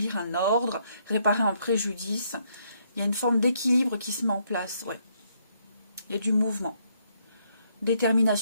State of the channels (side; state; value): both; inverted; correlation -0.72